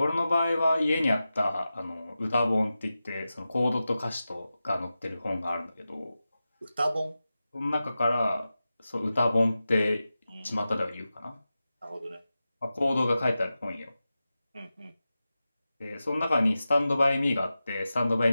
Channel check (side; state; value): both; inverted; correlation -0.93